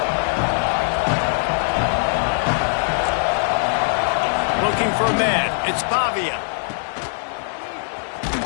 Looking for a man. It's Pavia.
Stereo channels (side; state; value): right; silent; 65 dB below the other